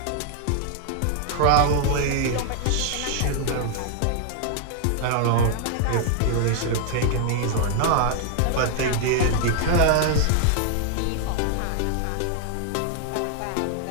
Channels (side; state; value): both; different; correlation 0.00